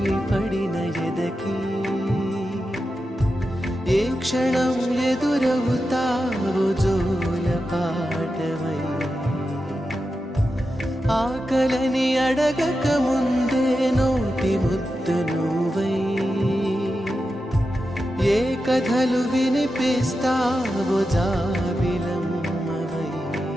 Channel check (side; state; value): both; normal; correlation 0.90